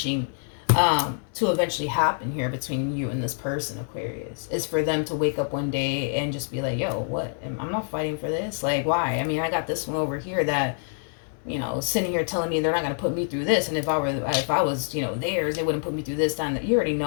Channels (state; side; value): silent; right; 61 dB below the other